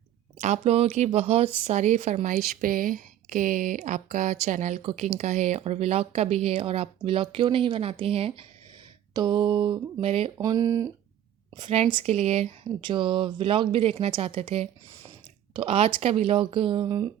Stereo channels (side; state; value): left; quieter; 11.2 dB